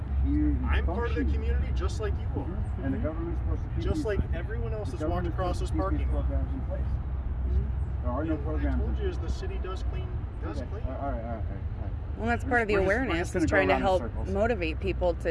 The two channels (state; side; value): identical; both; correlation 1.00